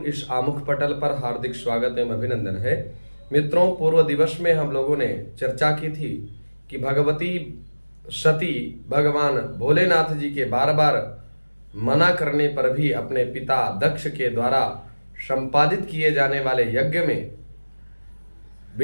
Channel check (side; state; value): both; inverted; correlation -1.00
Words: इस आमुख पटल पर हार्दिक स्वागत एवं अभिनंदन है। मित्रों, पूर्व दिवस में हम लोगों ने चर्चा की थी कि भगवती सती भगवान भोलेनाथ जी के बार बार मना करने पर भी अपने पिता दक्ष के द्वारा संपादित किए जाने वाले यज्ञ में